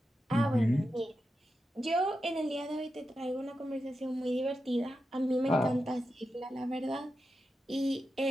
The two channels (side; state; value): both; normal; correlation 0.89